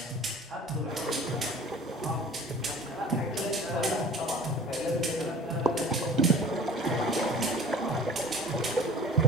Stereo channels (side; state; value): both; normal; correlation 0.44